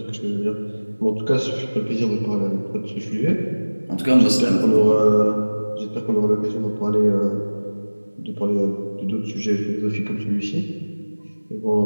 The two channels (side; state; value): both; inverted; correlation -1.00